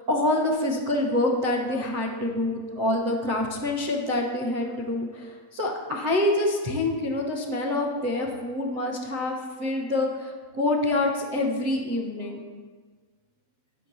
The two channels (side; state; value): left; late; 7.9 ms